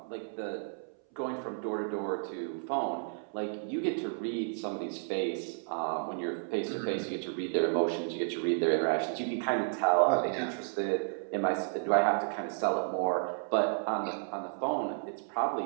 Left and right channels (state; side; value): silent; left; 56 dB below the other